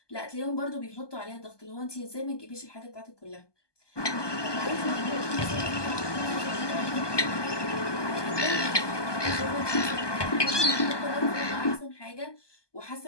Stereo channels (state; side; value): late; right; 1.2 ms